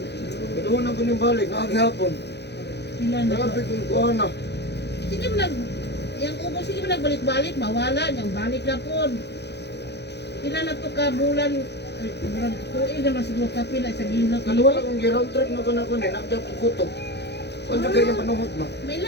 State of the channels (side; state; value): right; late; 0.49 ms